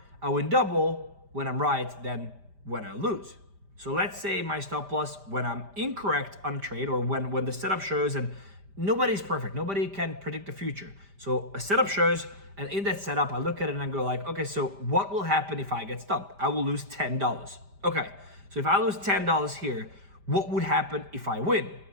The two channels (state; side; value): late; left; 5.0 ms